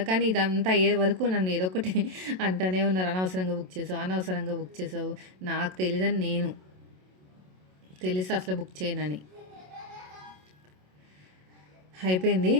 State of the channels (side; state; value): left; late; 27 ms